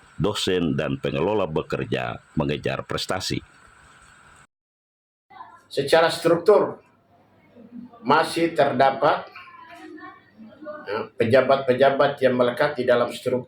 dosen dan pengelola bekerja mengejar prestasi. Secara struktur masih terdapat pejabat-pejabat yang melekat di dalam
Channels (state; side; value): identical; both; correlation 1.00